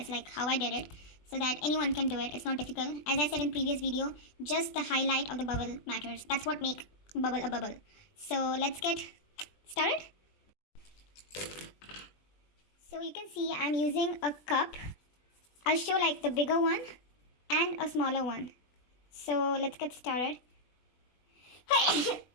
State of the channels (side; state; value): right; late; 20 ms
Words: how I did it so that anyone can do it. It's not difficult. As I said in previous video, just the highlight of the bubble matters. That's what makes bubble a bubble. So let's get started. So you can see I'm using a cup. I'll show the bigger one and a smaller one. So let's get started.